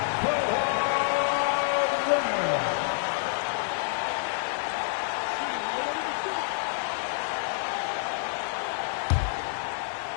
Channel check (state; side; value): silent; right; digital silence